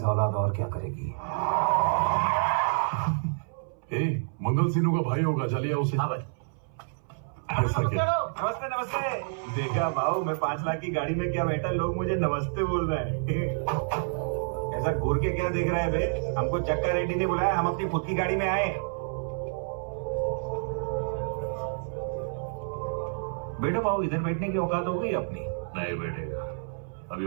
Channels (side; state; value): left; silent; 59 dB below the other